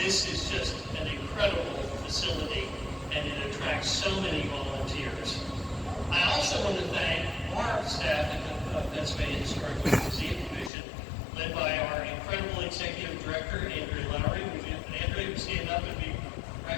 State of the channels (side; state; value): right; drops out; at 10.7 s